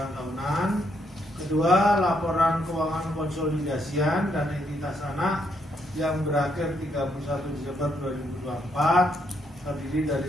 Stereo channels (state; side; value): normal; both; correlation 0.75